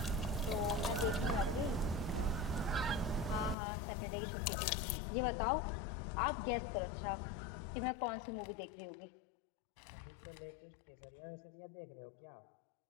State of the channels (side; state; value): right; drops out; at 3.6 s